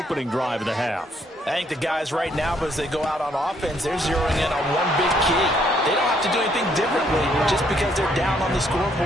drive of the half. I think the guys right now, as they go out on offense, they're zeroing in on one big key. They don't have to do anything differently just because they're down on the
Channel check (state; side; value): normal; both; correlation 0.69